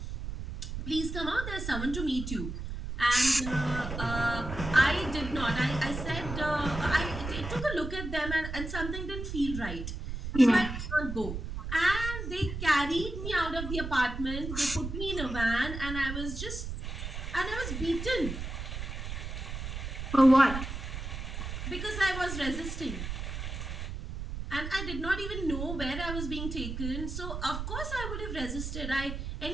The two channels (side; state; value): right; noise; rumble, 6 dB below the sound